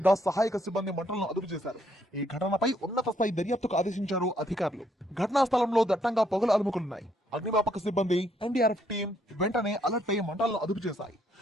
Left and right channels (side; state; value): both; normal; correlation 0.71